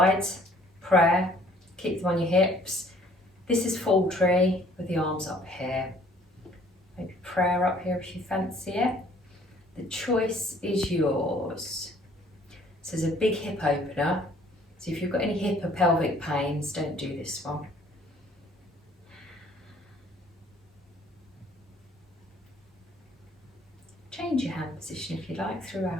prayer, keep them on your hips. This is full tree with the arms up here. Maybe prayer up here if you fancy it. The choice is yours. So there's a big hip opener. So if you've got any hip or pelvic pains, don't do this one. Change your hand position if you like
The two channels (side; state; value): both; normal; correlation 0.58